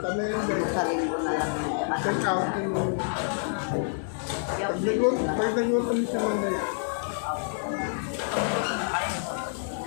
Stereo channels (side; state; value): right; silent; digital silence